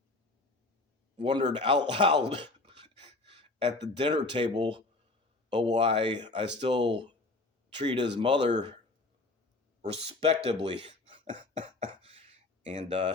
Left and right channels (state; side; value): quieter; right; 3.2 dB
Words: out loud at the dinner table of why I still treat his mother respectably. And